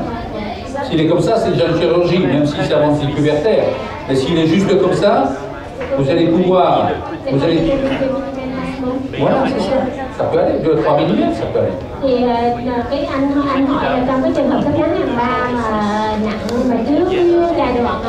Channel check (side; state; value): both; identical; correlation 1.00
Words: S'il est comme ça, c'est déjà une chirurgie, même si c'est avance décuvertaire. Mais s'il est juste comme ça, vous allez pouvoir... Voilà, c'est ça. Ça peut aller, 2-3 mm, ça peut aller. Thì cái anh hỏi là trong cái trường hợp thấp ngắn hàng 3 mà nặng mà trước giai đoạn